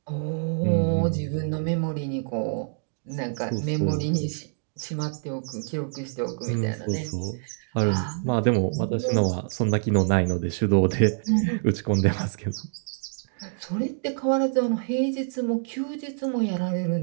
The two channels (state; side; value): silent; left; digital silence